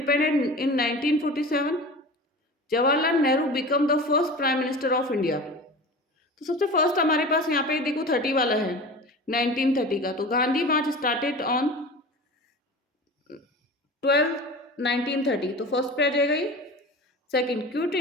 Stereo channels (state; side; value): normal; both; correlation 0.34